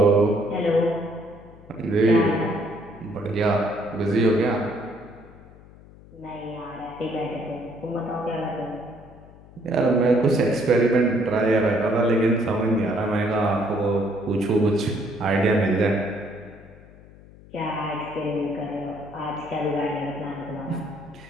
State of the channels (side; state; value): left; noise; hum, 22 dB below the sound